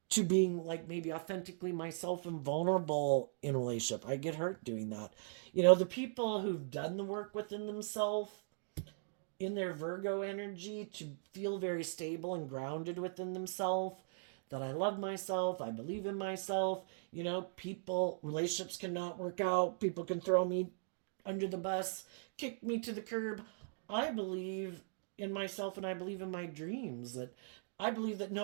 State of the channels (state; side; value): silent; left; digital silence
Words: to being like maybe authentically myself and vulnerable in a relationship. I get hurt doing that. The people who've done the work within themselves in their Virgo energy to feel very stable and grounded within themselves, that I love myself, I believe in myself. Relationships cannot work out, people can throw me under the bus, kick me to the curb. I believe in myself and I believe in my dreams. That I believe that